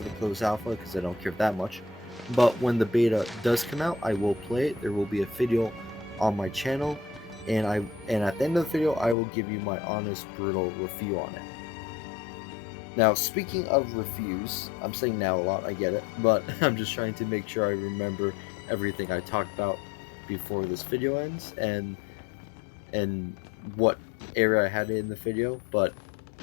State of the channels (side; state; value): right; drops out; at 9.2 s